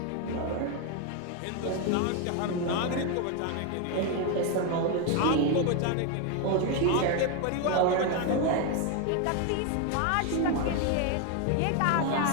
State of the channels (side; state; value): both; different; correlation 0.01